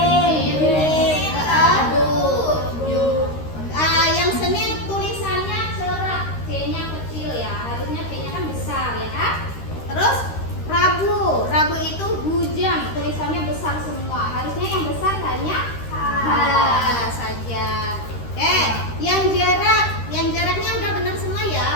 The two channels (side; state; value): right; late; 13 ms